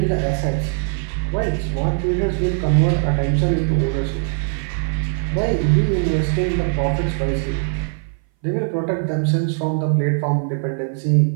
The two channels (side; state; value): left; silent; 60 dB below the other